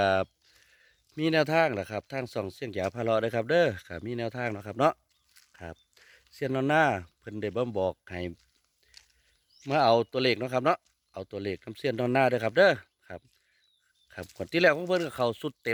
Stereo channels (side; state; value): both; identical; correlation 1.00